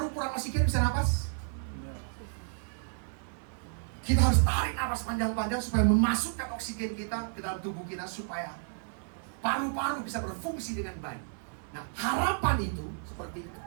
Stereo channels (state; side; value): silent; left; digital silence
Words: kurang oksigen bisa napas? Kita harus tarik napas panjang-panjang supaya memasukkan oksigen kita ke dalam tubuh kita supaya paru-paru bisa berfungsi dengan baik. Nah, harapan itu seperti itu.